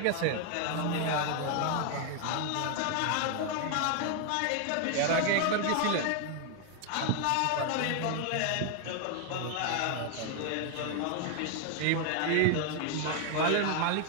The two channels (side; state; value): both; different; correlation 0.00